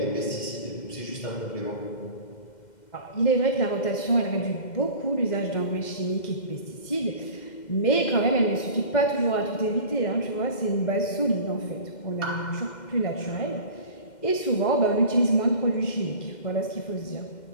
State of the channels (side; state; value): right; late; 2.1 ms